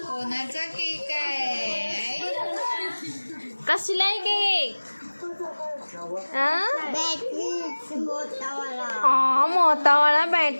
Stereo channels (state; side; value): inverted; both; correlation -1.00